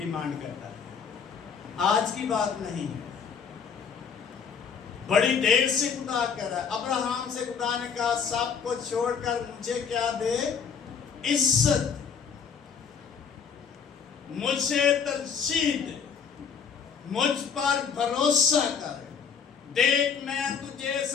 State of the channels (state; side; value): quieter; right; 6.6 dB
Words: करता है, आज की बात नहीं है। बड़ी देर से खुदा कह रहा है। अब्राहम से खुदा ने कहा सब को छोड़कर मुझे क्या दे, इज्जत, मुझे तरजीह दे, मुझ पर भरोसा कर। देख मैं तुझे